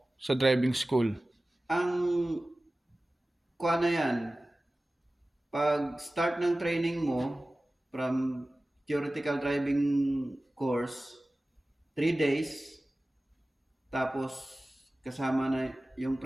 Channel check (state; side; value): normal; both; correlation 0.97